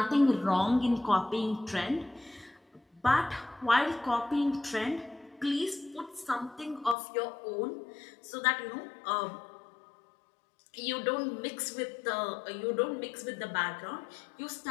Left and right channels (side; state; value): right; drops out; at 7.0 s